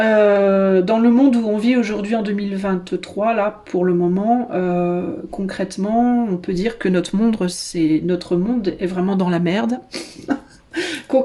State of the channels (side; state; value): both; identical; correlation 1.00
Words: le monde où on vit aujourd'hui en 2023, là, pour le moment, concrètement, on peut dire que notre monde est vraiment dans la merde.